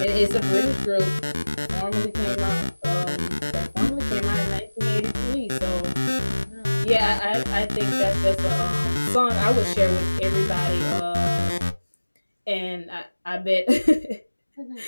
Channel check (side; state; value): both; inverted; correlation -1.00